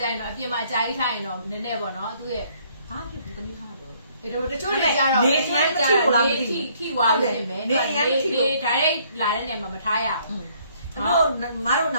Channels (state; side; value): inverted; both; correlation -0.64